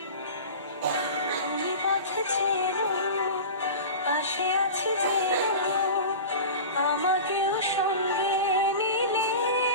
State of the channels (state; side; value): inverted; both; correlation -0.32